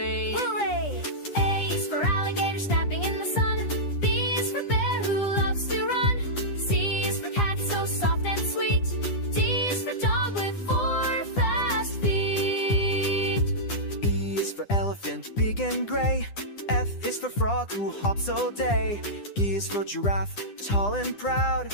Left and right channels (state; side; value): late; right; 9.9 ms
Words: Hooray! A is for alligator snapping in the sun. B is for bear who loves to run. C is for cat so soft and sweet. D is for dog with 4 fast feet. E is for elephant, big and gray. F is for frog who hops all day. G is for giraffe, tall and proud.